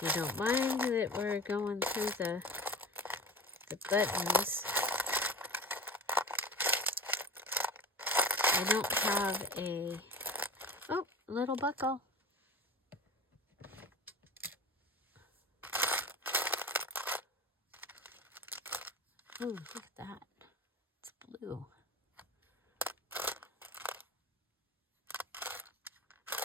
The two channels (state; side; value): normal; both; correlation 0.32